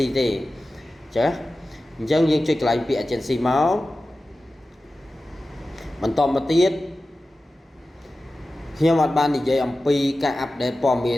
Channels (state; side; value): normal; both; correlation 0.95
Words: ទេចាអញ្ចឹងយើងចុចកន្លែងពាក្យ agency មកបន្តមកទៀតខ្ញុំអត់បាននិយាយអំពីការអាប់ដេតព័ត៌មាន